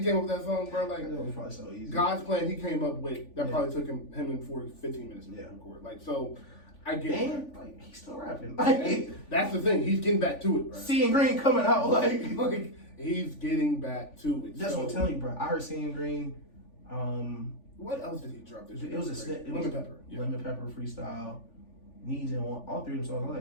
came up with that song, bro. Like It was probably so easy. God's Plan, he came up with that probably took him in 15 minutes to record. Like so, I get it. And like he's still rapping. Like That's the thing. He's getting back to it, bro. Seeing Green coming out. Like he's getting back to it. that's what I'm telling you, bro. I heard Seeing Green. What else did he drop this year? It was a snip. Lemon Pepper. Yeah. Lemon Pepper freestyle. Needs and one. All three of them songs. I'm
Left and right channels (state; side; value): late; right; 3.5 ms